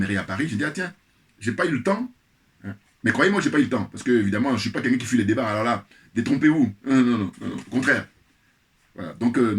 à Paris. Je dis, ah tiens, j'ai pas eu le temps. Mais croyez-moi, j'ai pas eu le temps. Parce que, évidemment, je ne suis pas quelqu'un qui fuit les débats. Alors là, détrompez-vous. Non, non, non, non, au contraire. Voilà. Donc,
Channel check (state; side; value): identical; both; correlation 1.00